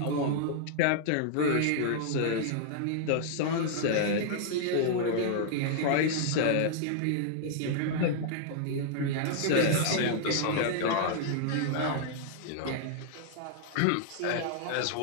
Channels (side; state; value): both; different; correlation -0.01